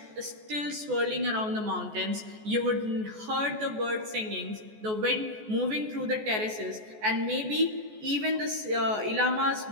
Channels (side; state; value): left; late; 14 ms